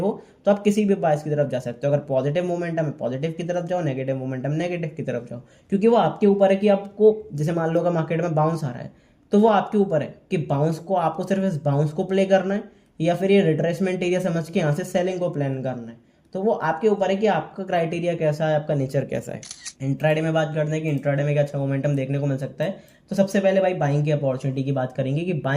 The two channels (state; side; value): identical; both; correlation 1.00